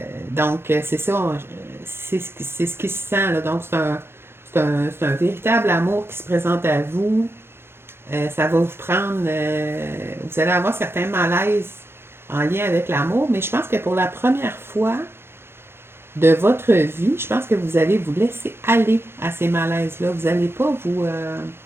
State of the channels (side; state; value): left; late; 0.11 ms